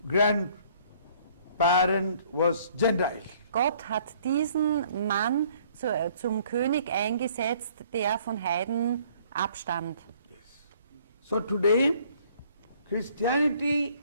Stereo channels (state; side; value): inverted; both; correlation -0.59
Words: grandparent was Gentile. Gott hat diesen Mann zum König eingesetzt, der von Heiden abstammt. So today, Christianity